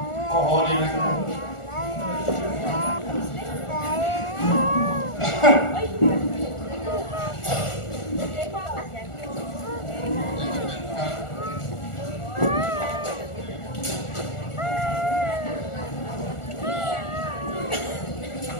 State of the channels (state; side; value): late; right; 1.4 ms